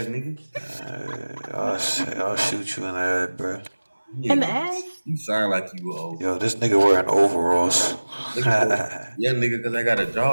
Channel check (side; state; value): both; inverted; correlation -1.00